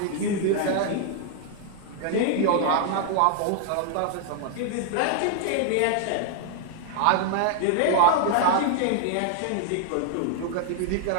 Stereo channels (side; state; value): both; different; correlation 0.00